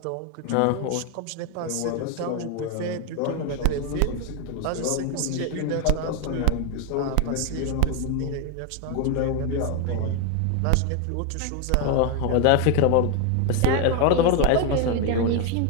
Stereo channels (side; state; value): both; different; correlation 0.01